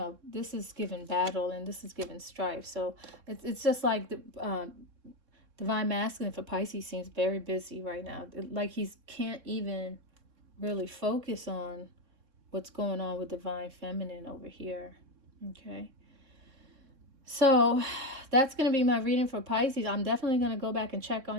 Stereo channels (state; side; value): late; left; 3.7 ms